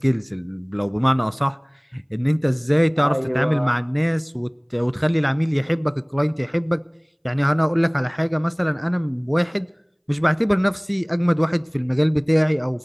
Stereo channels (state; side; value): identical; both; correlation 1.00